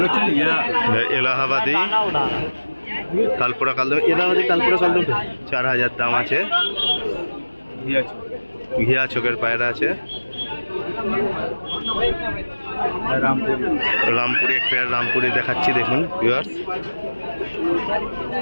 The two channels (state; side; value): inverted; both; correlation -1.00